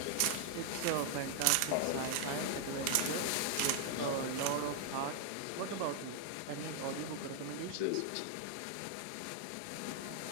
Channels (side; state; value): both; different; correlation 0.00